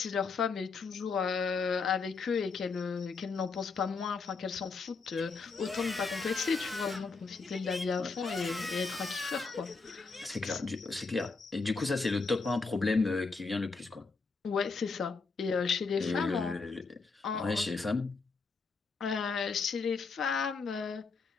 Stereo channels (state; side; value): quieter; right; 4.5 dB